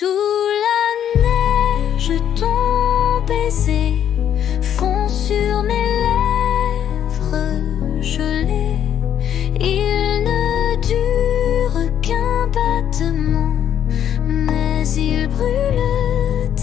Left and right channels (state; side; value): quieter; right; 9.7 dB